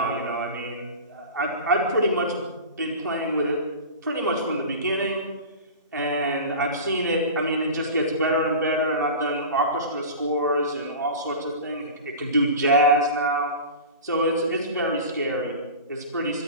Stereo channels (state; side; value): inverted; both; correlation -0.32